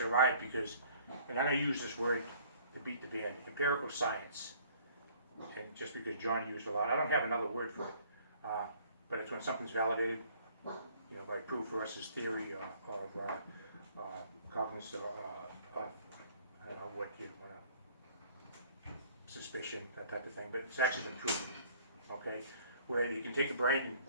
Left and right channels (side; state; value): both; inverted; correlation -0.56